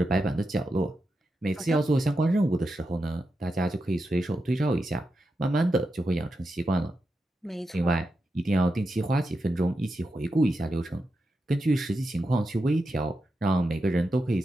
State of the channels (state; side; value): normal; both; correlation 0.88